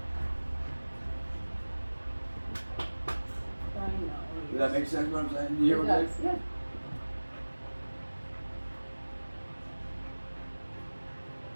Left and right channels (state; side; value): inverted; both; correlation -1.00